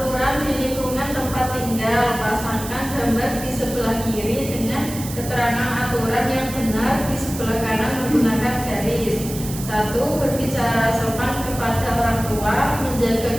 gambar di sebelah kiri dengan keterangan aturan yang benar di sebelah kanan menggunakan garis. 1. Berbicara sopan kepada orang tua,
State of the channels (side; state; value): right; noise; hiss, 11 dB below the sound